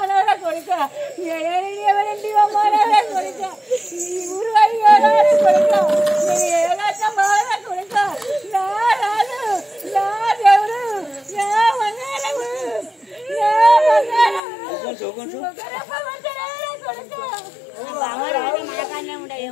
కొడుక ఎవరింటి అమ్మానవరా కొడుక ఈ ఊరు అయ్యారా కొడుక నేను ఏలాగా మారా కొడుక నా రాజు నా దేవుడు నా మంగళము నా మనకాన్నే ఉండే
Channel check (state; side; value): drops out; right; at 14.4 s